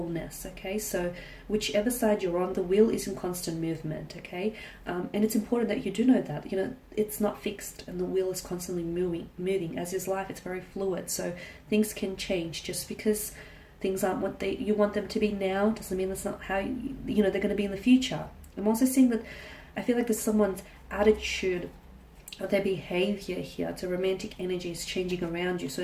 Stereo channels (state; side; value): identical; both; correlation 1.00